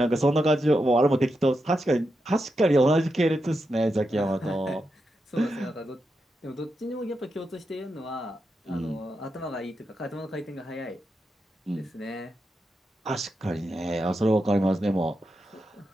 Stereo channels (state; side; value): normal; both; correlation 0.86